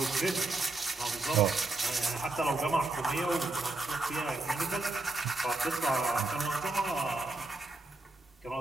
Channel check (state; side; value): quieter; left; 3.1 dB